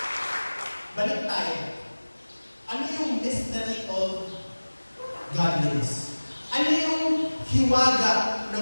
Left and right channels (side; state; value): both; inverted; correlation -1.00